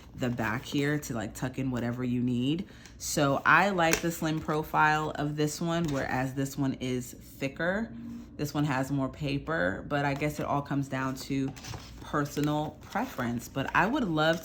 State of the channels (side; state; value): both; identical; correlation 1.00